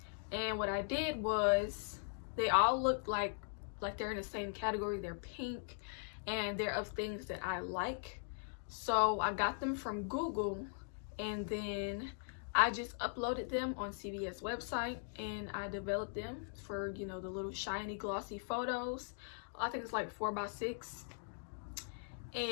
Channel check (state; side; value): silent; right; digital silence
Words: and what I did was they all look like they're in the same category. They're pink, and they're of things that I like. So I got them from Google, and then I just uploaded them on CVS website, and I developed them for, you know, the little shiny glossy photos. I think it's like 4x6,